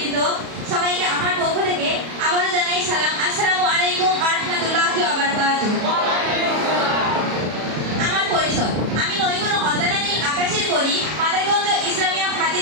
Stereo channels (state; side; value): late; left; 34 ms